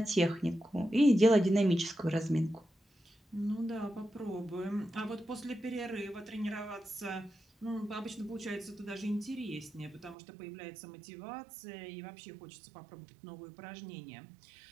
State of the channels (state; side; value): drops out; left; at 10.2 s